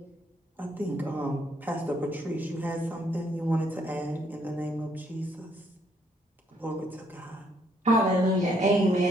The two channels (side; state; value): both; normal; correlation 0.70